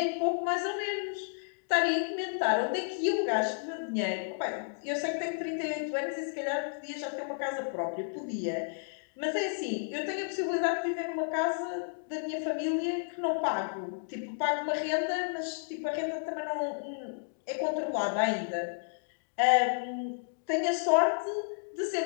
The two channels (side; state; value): right; silent; digital silence